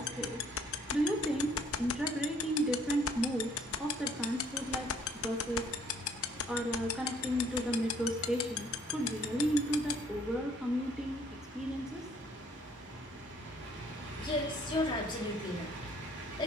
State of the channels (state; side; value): normal; both; correlation 0.61